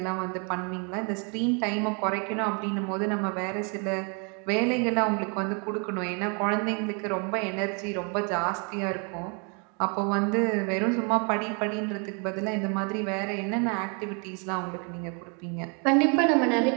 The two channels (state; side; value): quieter; left; 36.0 dB